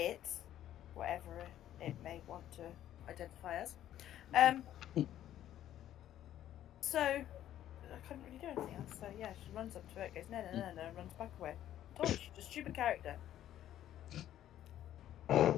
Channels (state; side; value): quieter; right; 12.0 dB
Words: Whatever it may want to identify as. So, I couldn't really do anything else. So, yeah, she runs up to it, goes, no, and runs back away. I told you, she's a stupid character.